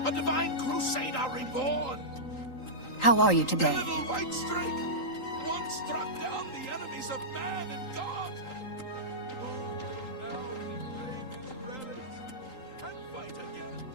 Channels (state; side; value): late; right; 3.8 ms